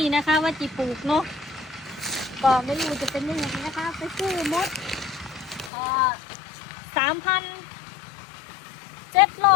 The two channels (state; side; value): drops out; right; at 5.7 s